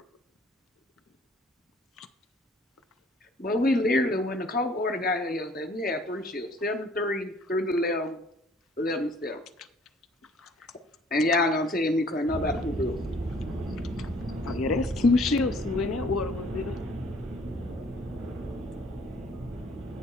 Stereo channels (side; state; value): both; normal; correlation 0.57